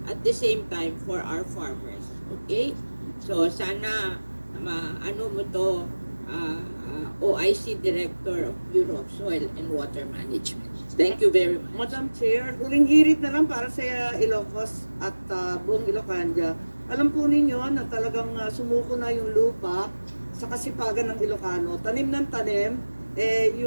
at the same time for our farmers. Okay? So, sana ano mo to, OIC Director of Bureau of Soil and Water Management. Thank you very much. Madam Chair, huling hirit na lang para sa Ilocos at buong Ilocania. Alam po ninyo na talagang sumuko na yung lupa sa kasipagan ng Ilocano. Tanim ng tanim,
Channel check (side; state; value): both; inverted; correlation -1.00